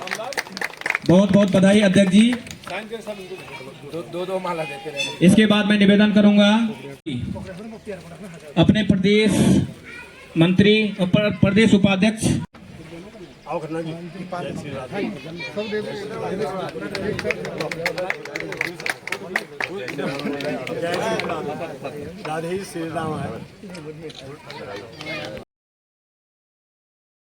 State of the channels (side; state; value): both; identical; correlation 1.00